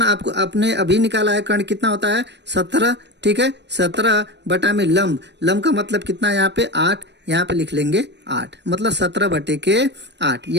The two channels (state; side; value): late; left; 0.50 ms